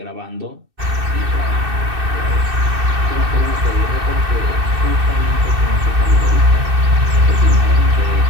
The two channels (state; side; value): late; left; 2.6 ms